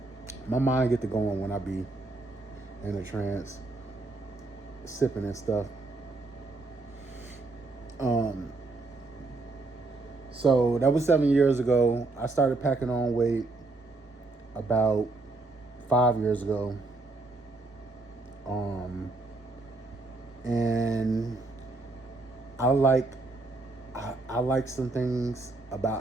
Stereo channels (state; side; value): quieter; left; 3.3 dB